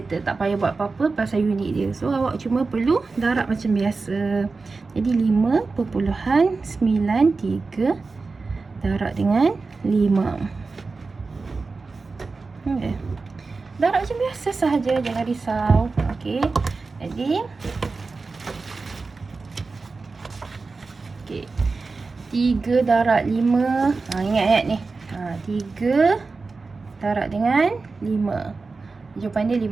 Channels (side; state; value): left; quieter; 4.1 dB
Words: tak payah buat apa-apa pasal unit dia. So awak cuma perlu darab macam biasa. Jadi 5.93 darab dengan 5. Okay. Darab macam biasa sahaja, jangan risau. Okey. Jadi okey, 3 darab 5. Ingat ni. 3 darab dengan 5. Jawapan dia